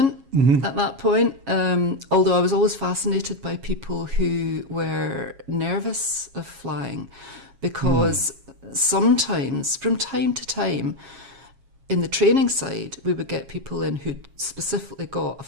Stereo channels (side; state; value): left; late; 7.3 ms